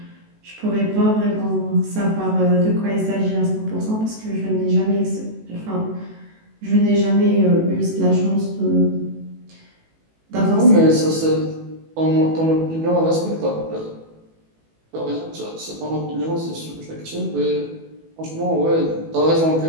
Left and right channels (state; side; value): late; left; 18 ms